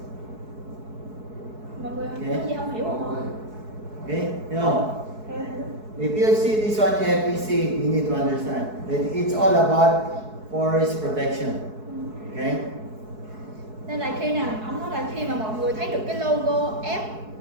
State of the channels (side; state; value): left; late; 4.7 ms